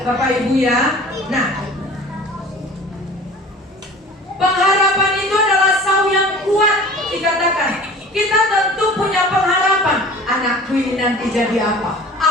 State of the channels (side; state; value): both; normal; correlation 0.43